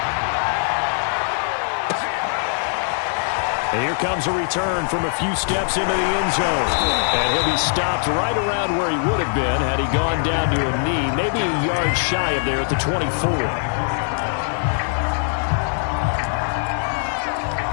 And here comes a return from a few steps into the end zone. And he'll be stopped right around where he would have been had he gone down to a knee, maybe a yard shy of there at the 24.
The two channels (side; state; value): right; silent; digital silence